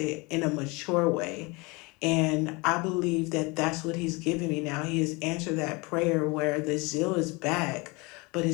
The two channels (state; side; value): quieter; right; 26.5 dB